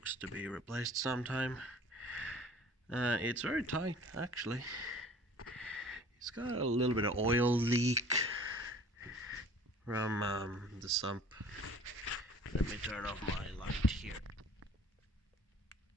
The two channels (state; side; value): normal; both; correlation 0.49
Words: to be replaced sometime. It's very tight, actually. It's got a little bit of oil leak from the sump. Let me turn off my light here.